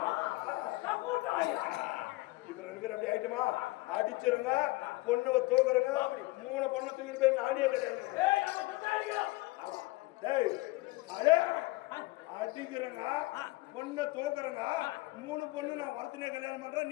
இப்ப 2 பேர் அப்படி ஆயிட்டுமா அடிச்சிருங்க பொண்ணுவ தூக்குறங்க 3 பொண்ணு தூக்கிட்டு போய் நானே அடிக்கிறங்க பொண்ணை தூக்குறங்க 3 பொண்ணு நான் வரத்தினே கல்யாணம் பண்றேன்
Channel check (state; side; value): quieter; right; 21.4 dB